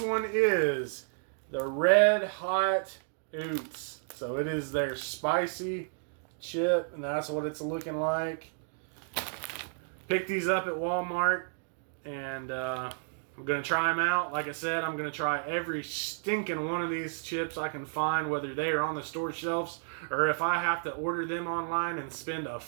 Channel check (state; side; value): silent; left; digital silence